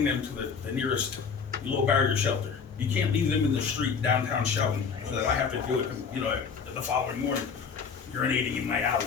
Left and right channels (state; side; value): quieter; right; 6.0 dB